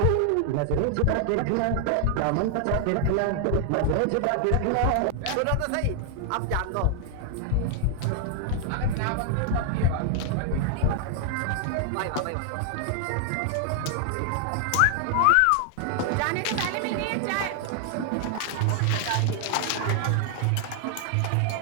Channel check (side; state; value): both; different; correlation 0.00